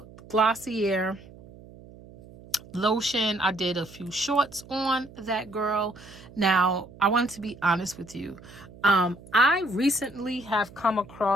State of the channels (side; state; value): right; noise; hum, 20 dB below the sound